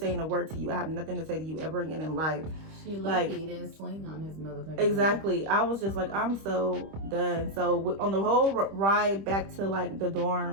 a word to you. I have nothing to say to you ever again in life. She lucky he didn't swing on his motherfucker. Exactly. I was just like, I'm so done. So on the whole ride back to like the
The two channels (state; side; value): late; left; 25 ms